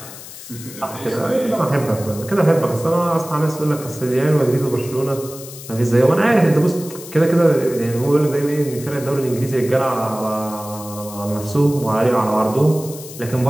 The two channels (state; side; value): noise; left; hiss, 14 dB below the sound